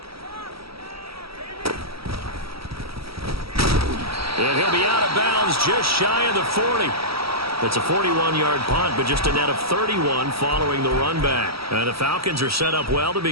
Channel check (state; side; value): late; left; 0.76 ms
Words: And he'll be out of bounds just shy of the 40. It's a 41-yard punt, but just a net of 31 following the run back. And the Falcons are set up well to